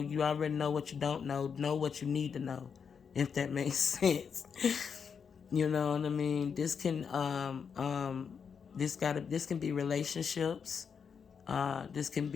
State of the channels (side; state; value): right; quieter; 6.5 dB